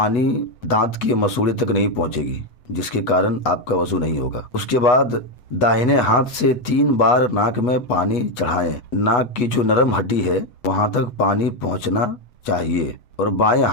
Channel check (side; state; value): right; late; 8.2 ms